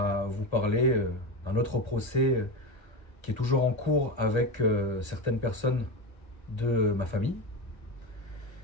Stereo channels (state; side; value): late; right; 1.3 ms